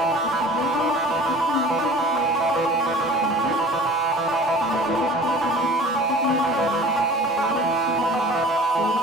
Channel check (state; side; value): normal; both; correlation 0.44